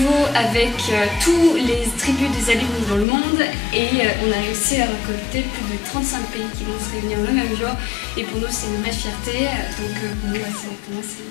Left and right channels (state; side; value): drops out; right; at 3.1 s